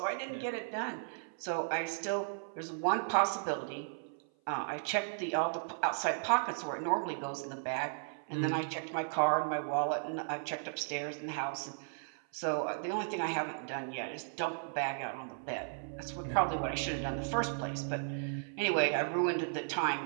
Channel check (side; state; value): left; silent; 54 dB below the other